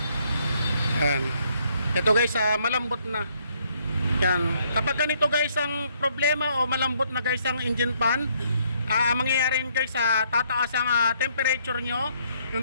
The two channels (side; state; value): both; inverted; correlation -0.69